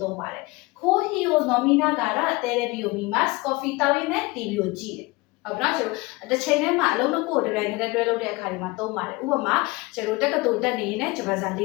သုံးပါတယ်။ခိုးဟီယိုနော်မီနာဂါရတဲရဘီယိုမီမတ် coffee တောင်းရင်းနဲ့ TV ကိုကြည့်တယ်။ဟုတ်ပြီနော်ကျွန်တော်တစ်ချိန်တည်းမှာအလုံးနှစ်ခုကိုတပြိုင်တည်းတွဲလုပ်တဲ့အခါဒီမှာသုံးပါတယ်။ဥပမာကျွန်တော်တက္ကသိုလ်တက်နေရင်လည်းဂျပန်စာလေ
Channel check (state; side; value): quieter; right; 23.0 dB